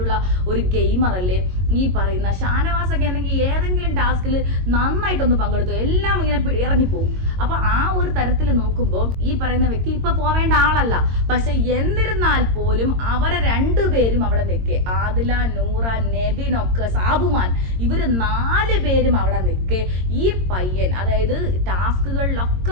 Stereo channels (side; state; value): left; late; 22 ms